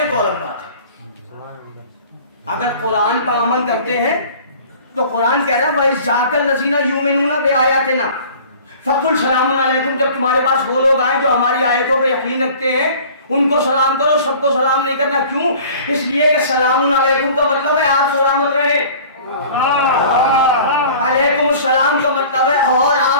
तो अलग बात है। अगर कुरान पर अमल करते हैं तो कुरान कह रहा है वही जाकल्लज़ीना युमिनूना बिआयातिना फकुल सलामुन अलैकुम। जब तुम्हारे पास वो लोग आए जो हमारी आयतों पर यकीन रखते हैं उनको सलाम करो। सबको सलाम नहीं करना। क्यों? इसलिए कि सलामुन अलैकुम का मतलब है आप सलामत रहे। अलैकुम सलाम का मतलब है और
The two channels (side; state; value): both; inverted; correlation -0.46